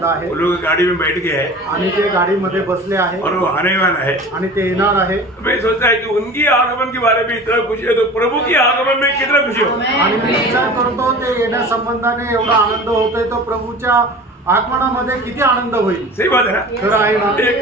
आहे। वो लोग गाड़ी में बैठ गए हैं आणि ते गाडीमध्ये बसले आहे और वो आने वाला है आणि ते येणार आहे। मैं सोचता है कि उनकी आगमन के बारे में इतना खुशी है तो प्रभु की आगमन में कितना खुशी हो। आणि मी विचार करतो ते येण्यासंबंधाने एवढा आनंद होतोय तो प्रभूच्या आगमनामध्ये किती आनंद होईल। सही बात है ना? खरं आहे ना?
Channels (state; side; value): normal; both; correlation 0.38